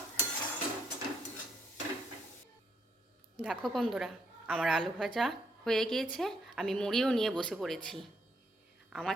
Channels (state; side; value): normal; both; correlation 0.74